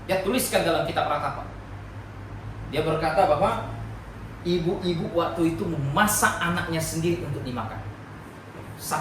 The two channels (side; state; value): both; identical; correlation 1.00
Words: Dia tuliskan dalam kitab Ratapan. Dia berkata bahwa ibu-ibu waktu itu memasak anaknya sendiri untuk dimakan.